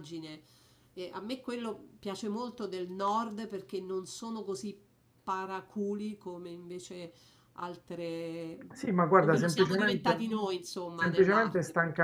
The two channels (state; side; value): identical; both; correlation 1.00